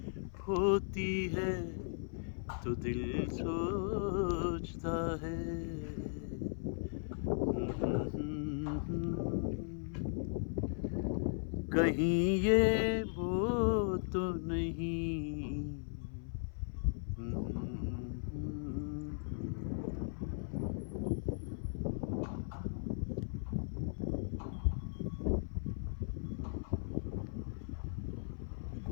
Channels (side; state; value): right; silent; 53 dB below the other